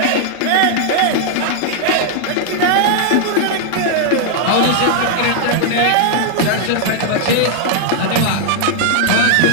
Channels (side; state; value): both; different; correlation -0.01